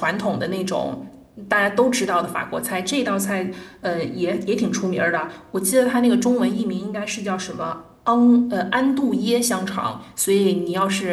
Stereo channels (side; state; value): both; identical; correlation 1.00